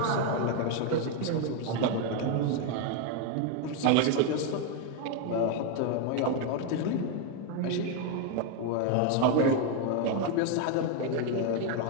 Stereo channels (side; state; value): both; different; correlation 0.01